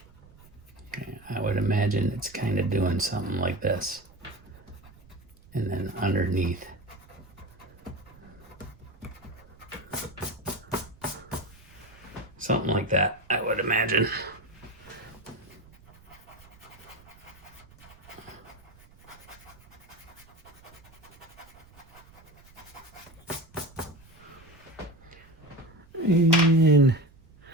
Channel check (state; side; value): noise; right; rumble, 24 dB below the sound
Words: I would imagine it's kind of doing something like this. And then underneath. Something like that, I would imagine. And